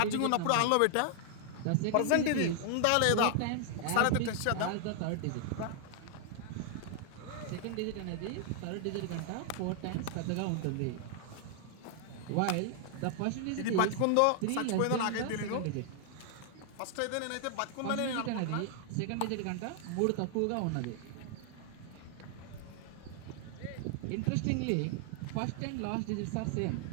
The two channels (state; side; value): different; both; correlation 0.00